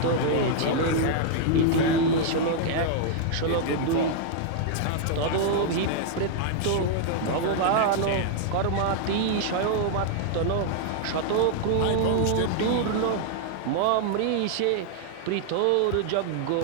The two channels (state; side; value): different; both; correlation 0.00